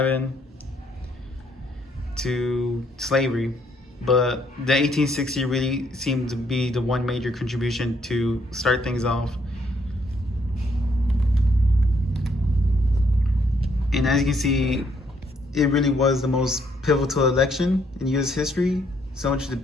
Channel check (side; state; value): both; normal; correlation 0.70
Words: to slavery. But the 1860 really seemed to be the one major contribution to start things off. And as you can see, it really was the most pivotal election in U.S. history. So much